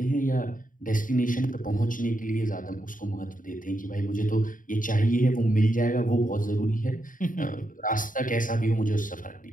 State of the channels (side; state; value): right; late; 0.39 ms